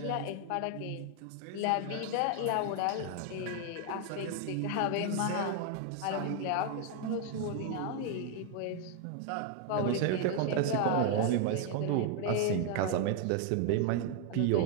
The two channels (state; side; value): different; both; correlation 0.00